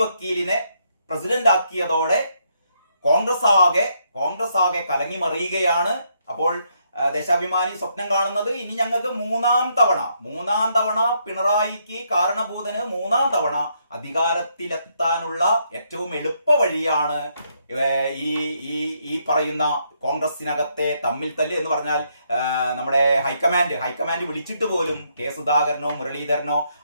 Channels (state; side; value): inverted; both; correlation -0.75